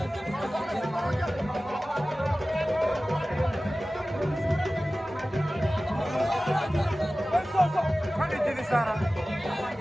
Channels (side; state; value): both; normal; correlation 0.96